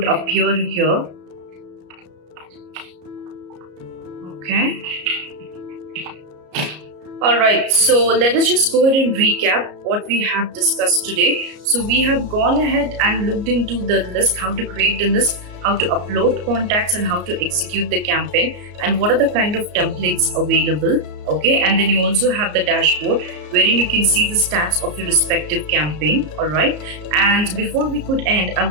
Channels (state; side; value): late; left; 33 ms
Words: appear here. Okay. Alright, so let us just go ahead and recap what we have discussed today. So we have gone ahead and looked into the list, how to create a list, how to upload contacts, and how to execute the campaign, and what are the kind of templates available. Okay, and then you also have the dashboard wherein you can see the stats of your respective campaign. Alright, and before we could end, I